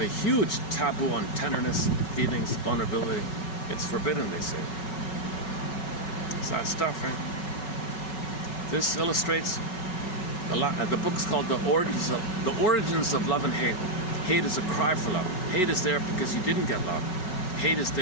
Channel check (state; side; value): late; right; 5.3 ms